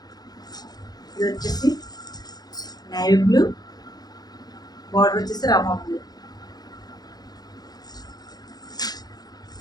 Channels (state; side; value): late; right; 0.19 ms